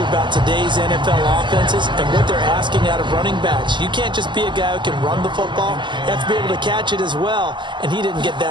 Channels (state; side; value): late; left; 0.23 ms